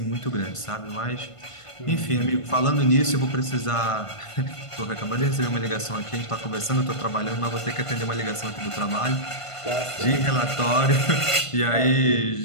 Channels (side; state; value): right; late; 1.5 ms